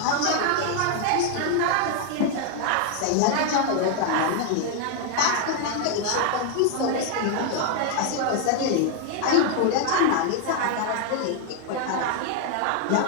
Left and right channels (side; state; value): both; different; correlation 0.00